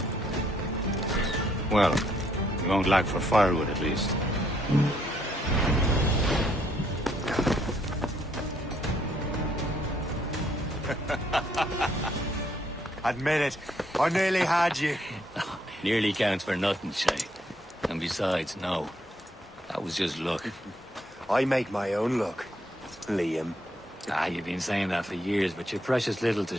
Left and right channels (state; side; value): normal; both; correlation 0.70